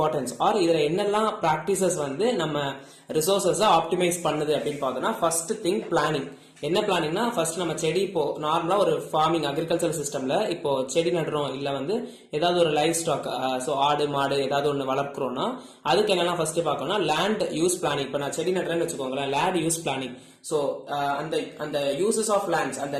ஆர் இதுல என்னெல்லாம் பிராக்டிசஸ் வந்து நம்ம ரிசோர்சஸ ஆப்டிமைஸ் பண்ணுது அப்படின்னு பார்த்தோம்னா ஃபர்ஸ்ட் திங் பிளானிங். என்ன பிளானிங்னா ஃபர்ஸ்ட் நம்ம செடி இப்போ நார்மலா ஒரு ஃபார்மிங் அக்ரிகல்ச்சர் சிஸ்டம்ல இப்போ செடி நடுறோம் இல்ல வந்து ஏதாவது ஒரு லைஃப் ஸ்டாக் சோ ஆடு மாடு ஏதாவது ஒன்று வளர்க்குறோம்னா அதுக்கு என்னெல்லாம் ஃபர்ஸ்ட் பார்க்கணும்னா லேண்ட் யூஸ் பிளானிங். இப்போ நான் செடி நடுறேன்னு வச்சுக்கோங்களேன், லேண்ட் யூஸ் பிளானிங். சோ அந்த யூசஸ் ஆஃப் லேண்ட்ஸ், அந்த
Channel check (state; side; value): identical; both; correlation 1.00